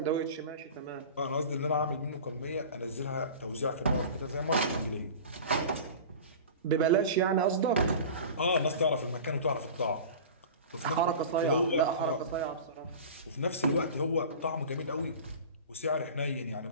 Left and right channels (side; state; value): both; inverted; correlation -0.36